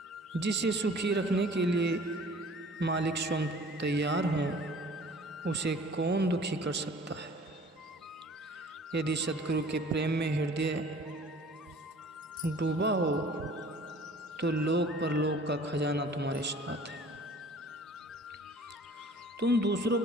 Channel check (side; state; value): both; normal; correlation 0.49